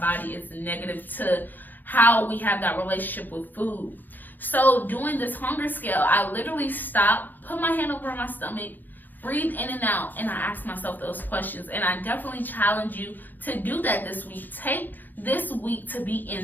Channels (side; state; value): right; late; 0.087 ms